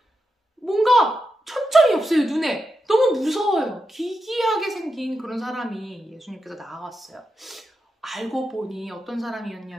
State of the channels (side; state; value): both; normal; correlation 0.87